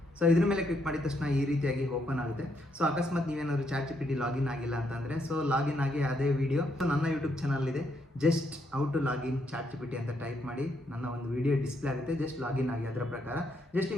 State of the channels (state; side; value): normal; both; correlation 0.76